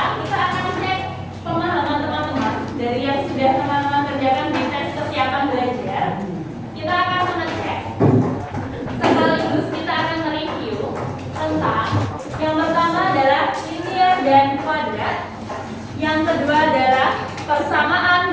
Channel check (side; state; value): both; identical; correlation 1.00